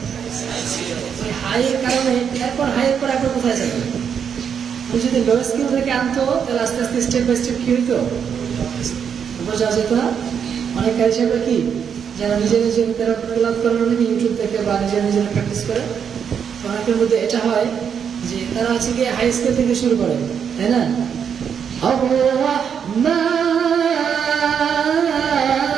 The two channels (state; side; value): quieter; left; 7.5 dB